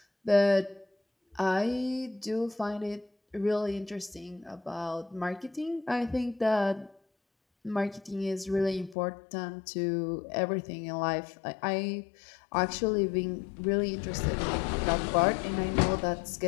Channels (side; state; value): right; drops out; at 9.0 s